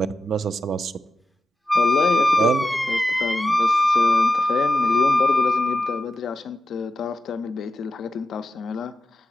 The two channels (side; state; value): both; normal; correlation 0.91